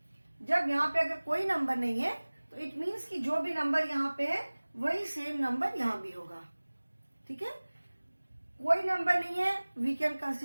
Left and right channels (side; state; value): both; inverted; correlation -1.00